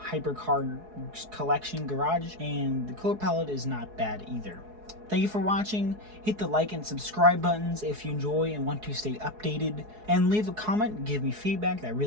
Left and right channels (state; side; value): late; left; 4.7 ms